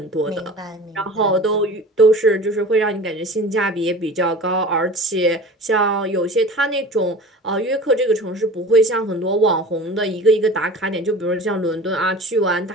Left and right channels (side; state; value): both; normal; correlation 0.39